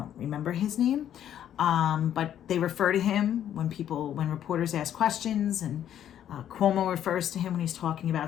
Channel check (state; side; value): quieter; right; 10.5 dB